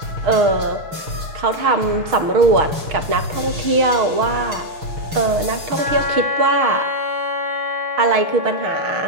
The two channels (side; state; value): left; late; 6.1 ms